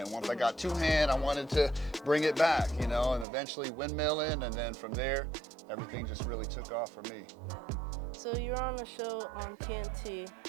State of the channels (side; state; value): left; drops out; at 3.2 s